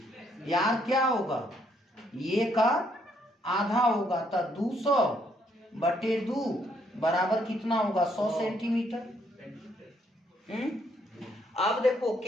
यार क्या होगा ये का आधा होगा, तो 200/2 बराबर कितना होगा 100 सेंटीमीटर। अब देखो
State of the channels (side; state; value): both; normal; correlation 0.71